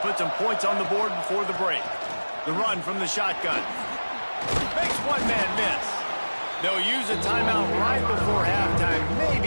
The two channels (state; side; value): inverted; both; correlation -1.00